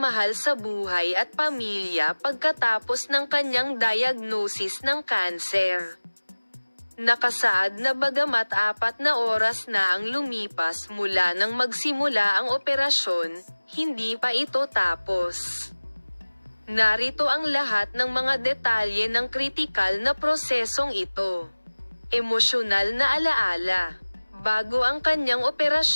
sa buhay at pamilya pagkatapos ng kanyang diagnosis ng kanser. Nakasaad na bagamat 4 na oras na ang lumipas mula nang magsimula ang operasyon, hindi pa ito tapos. Narito ang lahat ng mga detalye ng kritikal na prosesong ito. Emosyonal na alaala. Bago ang kanyang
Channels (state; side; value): inverted; both; correlation -1.00